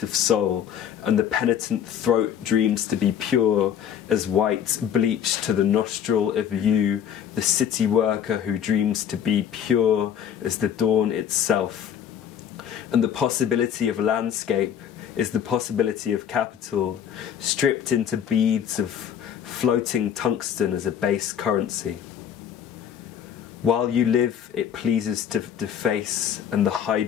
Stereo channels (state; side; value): quieter; right; 9.0 dB